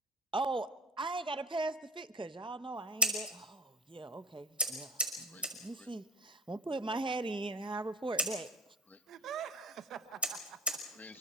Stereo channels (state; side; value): normal; both; correlation 0.35